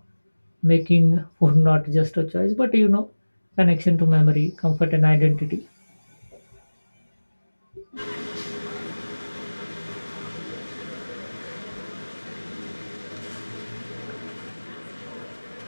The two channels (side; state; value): both; inverted; correlation -1.00